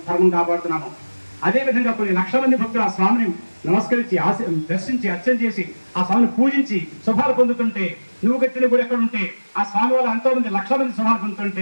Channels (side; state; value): both; inverted; correlation -1.00